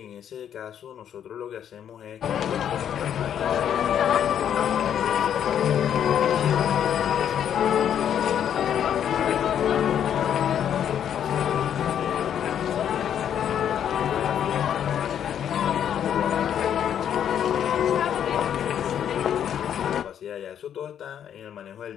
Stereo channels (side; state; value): right; quieter; 9.3 dB